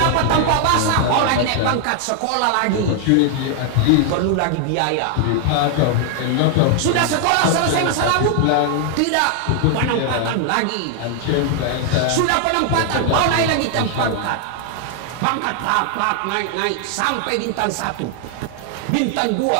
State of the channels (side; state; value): both; different; correlation 0.00